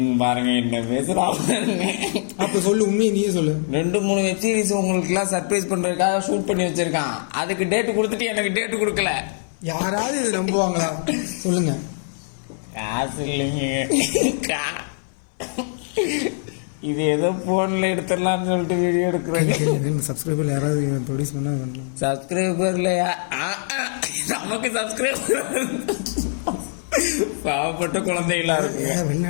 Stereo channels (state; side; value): silent; right; 60 dB below the other